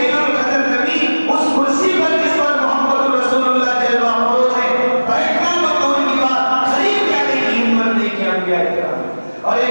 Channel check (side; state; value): both; inverted; correlation -1.00